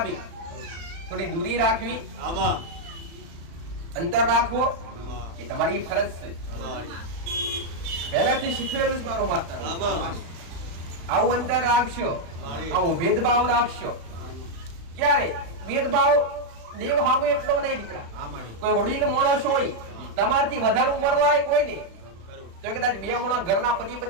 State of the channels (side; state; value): left; late; 35 ms